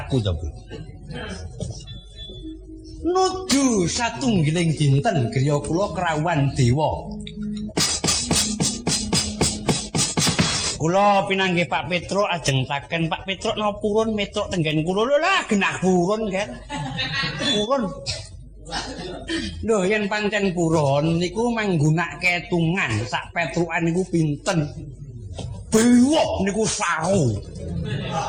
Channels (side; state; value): both; identical; correlation 1.00